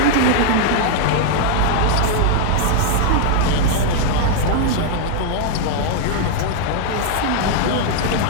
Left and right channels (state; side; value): different; both; correlation 0.00